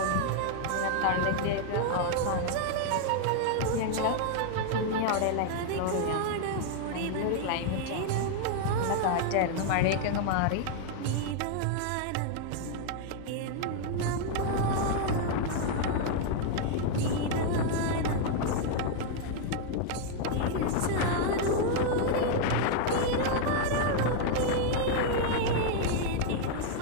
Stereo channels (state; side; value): different; both; correlation 0.00